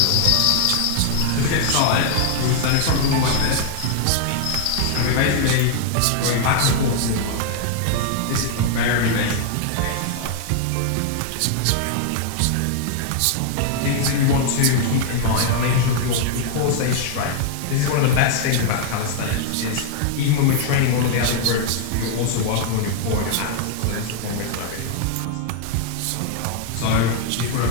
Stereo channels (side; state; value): both; different; correlation 0.00